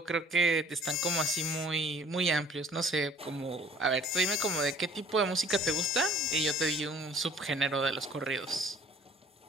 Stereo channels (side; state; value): both; normal; correlation 0.53